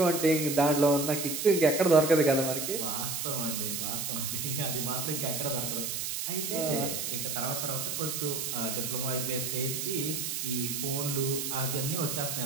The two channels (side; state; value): right; noise; hiss, 3 dB below the sound